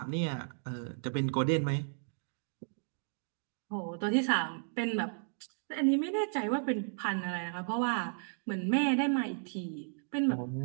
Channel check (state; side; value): silent; left; digital silence